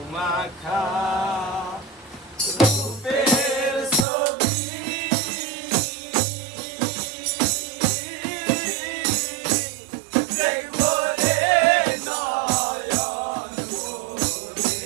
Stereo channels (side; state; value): left; drops out; at 4.0 s